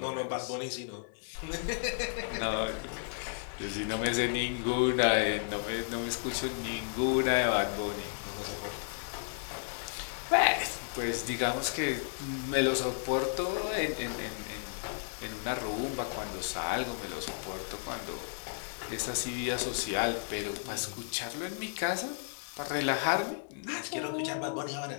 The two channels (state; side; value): silent; right; digital silence